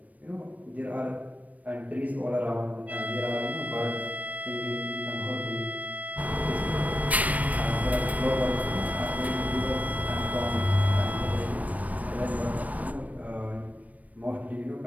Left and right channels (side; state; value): left; late; 0.071 ms